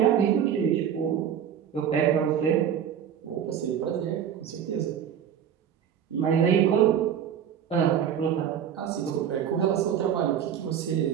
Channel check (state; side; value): quieter; left; 9.0 dB